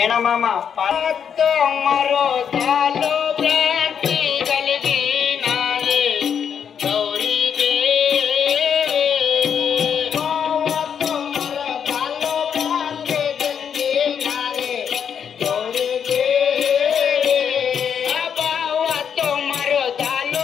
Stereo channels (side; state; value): right; quieter; 7.7 dB